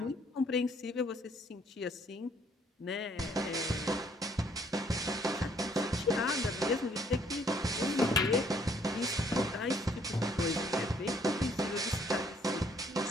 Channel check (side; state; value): both; normal; correlation 0.65